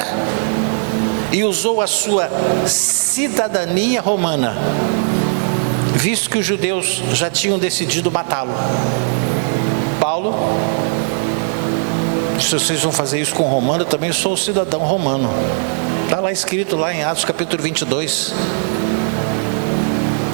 e usou a sua cidadania romana, visto que os judeus já tinham decidido matá-lo. Paulo, se vocês vão fazer isso com o romano, eu também sou cidadão romano. Está lá escrito, lá em Atos capítulo 22.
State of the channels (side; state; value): left; silent; digital silence